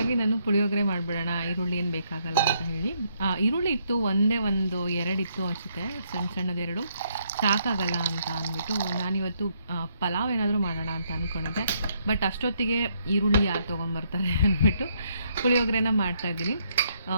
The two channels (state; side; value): inverted; both; correlation -0.73